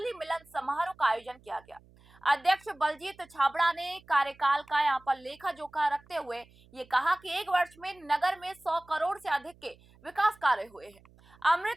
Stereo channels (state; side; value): noise; right; hum, 27 dB below the sound